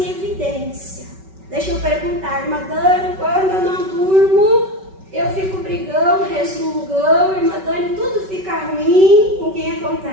evidência. Deixa eu perguntar, irmã Dani, quando eu não durmo, eu fico brigando, resmungando, irmã Dani, tudo fica ruim. Com quem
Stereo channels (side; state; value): left; late; 5.3 ms